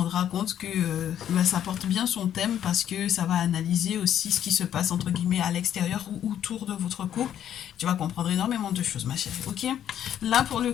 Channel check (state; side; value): quieter; right; 10.3 dB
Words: compte que ça porte bien son thème parce que ça va analyser aussi ce qui se passe entre guillemets à l'extérieur ou autour de votre couple. Tu vas comprendre énormément de choses, ma chérie. Ok? Là, pour le